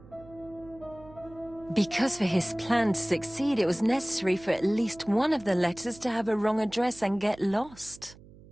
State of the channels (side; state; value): right; noise; hum, 22 dB below the sound